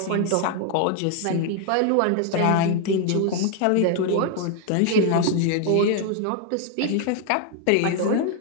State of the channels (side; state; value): both; different; correlation 0.00